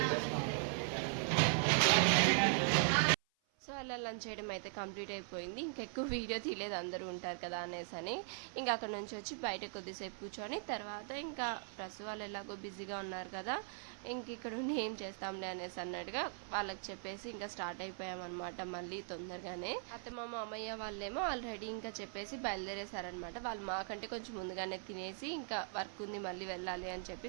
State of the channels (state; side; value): silent; left; 51 dB below the other